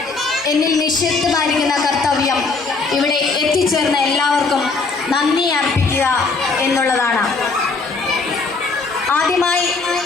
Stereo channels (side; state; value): right; quieter; 4.1 dB